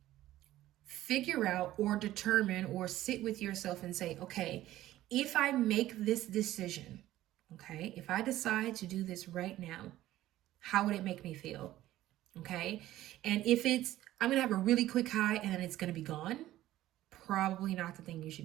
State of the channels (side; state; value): left; quieter; 14.7 dB